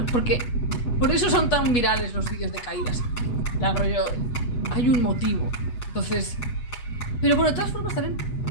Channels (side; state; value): right; late; 8.3 ms